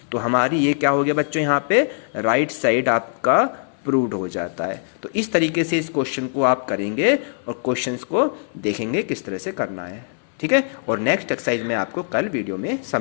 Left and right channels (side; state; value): right; silent; 60 dB below the other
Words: तो हमारी ये क्या हो गया बच्चों, यहाँ पे राइट साइड आपका प्रूव्ड हो जाता है। तो इस तरीके से इस क्वेश्चन को आप करेंगे और क्वेश्चंस को देखेंगे किस तरह से करना है, ठीक है। और नेक्स्ट एक्सरसाइज मैं आपको कल वीडियो में